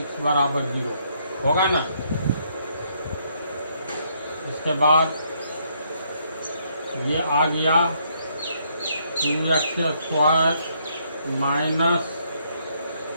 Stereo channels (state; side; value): inverted; both; correlation -0.71